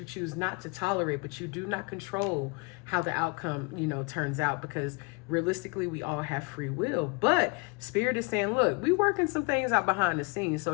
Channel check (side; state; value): right; quieter; 30.5 dB